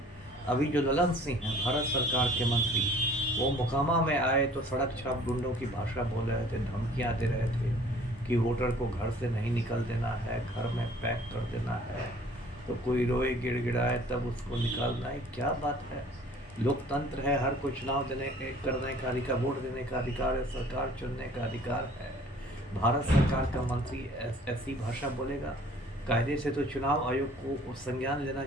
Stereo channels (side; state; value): both; normal; correlation 0.53